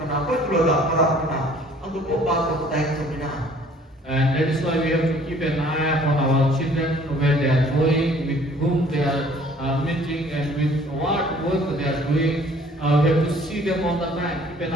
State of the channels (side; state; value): both; normal; correlation 0.55